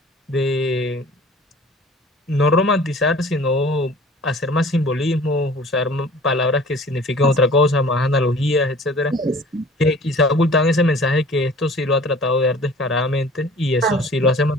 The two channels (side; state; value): both; normal; correlation 0.48